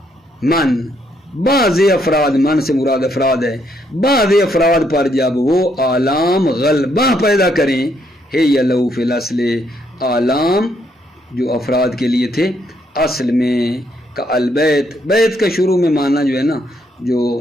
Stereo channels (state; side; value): normal; both; correlation 0.73